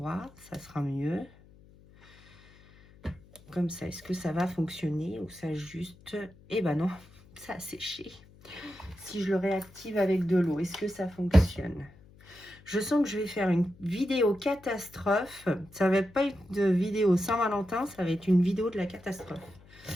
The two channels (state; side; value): noise; left; hum, 25 dB below the sound